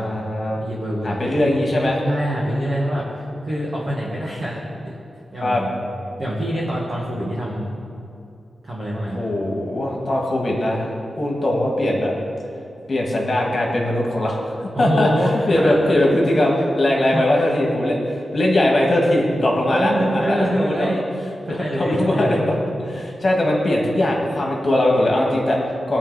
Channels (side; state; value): both; normal; correlation 0.92